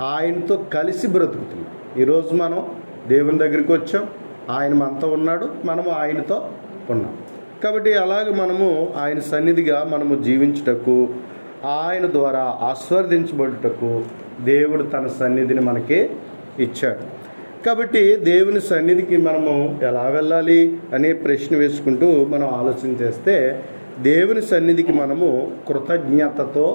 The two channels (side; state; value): both; inverted; correlation -1.00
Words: ఆయనతో కలిసి బ్రతుకుతున్నాం. ఈరోజు మనం దేవుని దగ్గరికి వచ్చాం, ఆయన మనతో ఉన్నాడు, మనము ఆయనతో ఉన్నాం. కాబట్టి అలాగే మనము ఆయన సన్నిధిగా మనము జీవించుటకు, ఆయన ద్వారా ఆశీర్వదించబడుటకు దేవుడు తన సన్నిధిని మనకి ఇచ్చాడు. కాబట్టి దేవుని సన్నిధికి మనము ఎలా వెళ్ళాలి అనే ప్రశ్న వేసుకుంటూ మనం ఆలోచన చేస్తే, దేవుని సన్నిధికి మనము కృతజ్ఞతతో